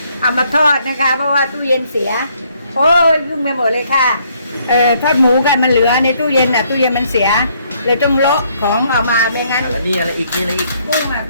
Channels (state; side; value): inverted; both; correlation -0.68